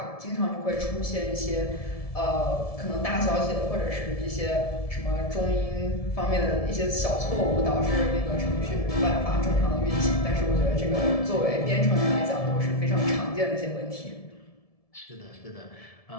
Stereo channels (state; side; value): late; right; 1.7 ms